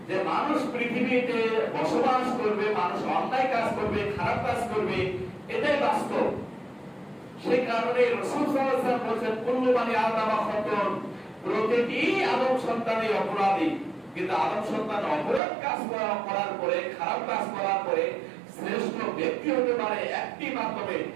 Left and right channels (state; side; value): drops out; left; at 15.4 s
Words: যে মানুষ পৃথিবীতে বসবাস করবে, মানুষ অন্যায় কাজ করবে, খারাপ কাজ করবে, এটাই বাস্তব। সেই কারণে রাসূল সাল্লাল্লাহু আলাইহি ওয়াসাল্লাম বলেছেন কুল্লু বানি আদম খাতাউন, প্রতিটি আদম সন্তানই অপরাধী। কিন্তু আদম সন্তান অপরাধ কাজ করার পরে, খারাপ কাজ করার পরে শ্রেষ্ঠ ব্যক্তি হতে পারে একটি মাধ্যমে,